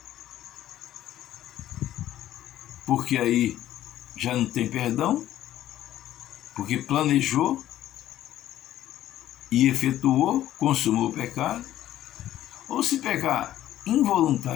porque aí já não tem perdão, porque planejou e efetuou, consumou o pecado, ou se pecar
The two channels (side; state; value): right; quieter; 12.9 dB